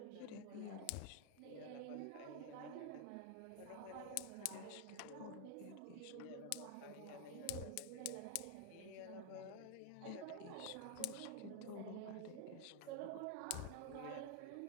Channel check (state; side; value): different; both; correlation 0.00